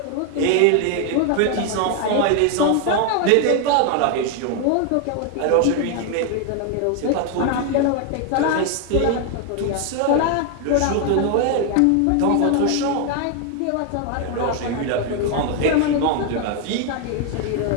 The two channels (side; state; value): both; different; correlation 0.01